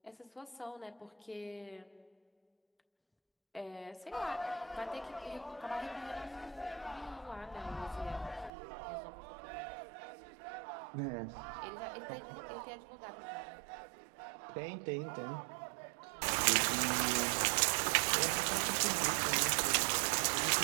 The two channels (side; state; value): left; drops out; at 8.5 s